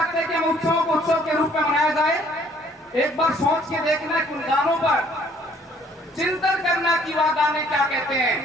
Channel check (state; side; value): normal; both; correlation 0.61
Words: कि हम उत्सवों को उत्सव के रूप में मनाया जाए? एक बार सोच के देखना कि उन गानों पर चिंतन करना कि वह गाने क्या कहते